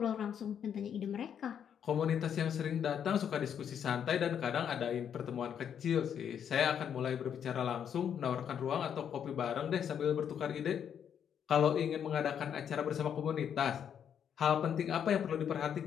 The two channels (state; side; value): quieter; right; 8.5 dB